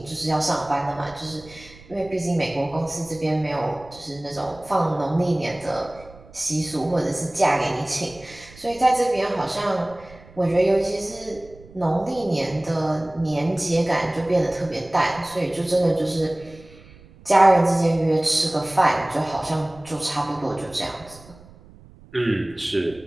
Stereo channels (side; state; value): right; noise; rumble, 23 dB below the sound